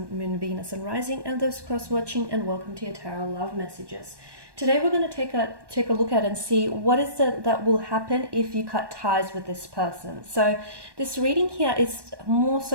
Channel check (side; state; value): left; late; 1.2 ms